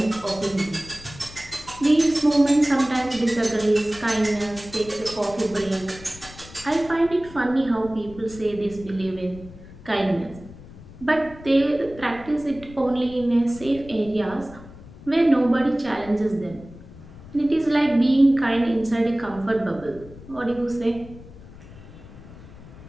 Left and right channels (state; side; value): noise; left; rumble, 18 dB below the sound